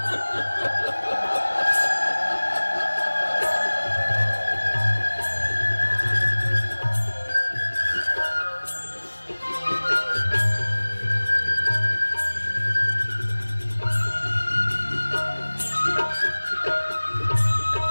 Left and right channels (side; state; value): both; inverted; correlation -1.00